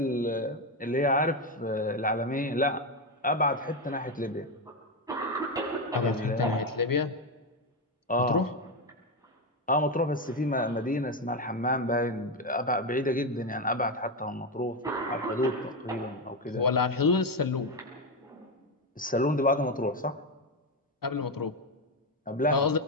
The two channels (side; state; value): both; normal; correlation 0.10